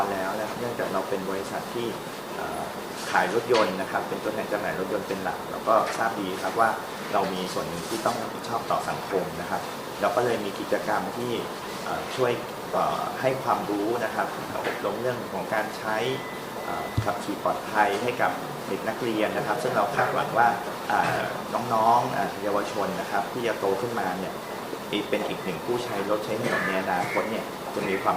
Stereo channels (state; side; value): identical; both; correlation 1.00